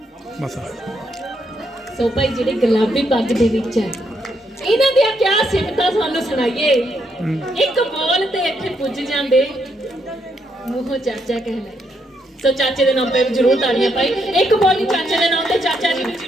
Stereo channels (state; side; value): normal; both; correlation 0.77